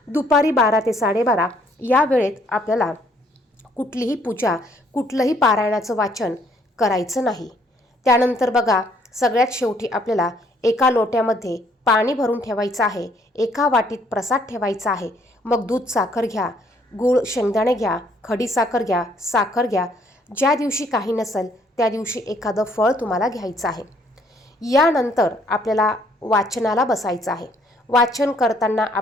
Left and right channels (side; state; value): both; normal; correlation 0.65